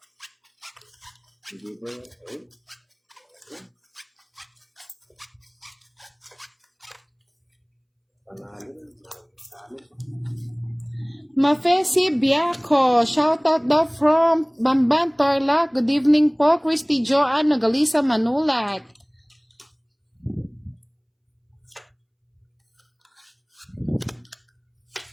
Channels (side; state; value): both; identical; correlation 1.00